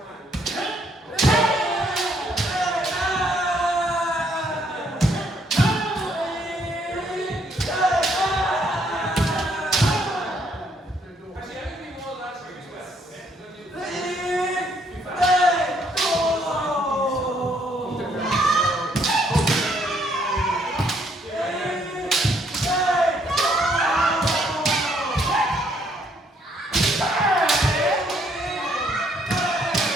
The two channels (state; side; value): normal; both; correlation 0.69